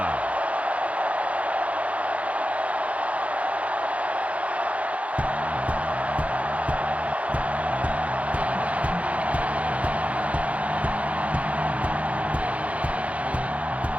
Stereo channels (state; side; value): late; left; 0.065 ms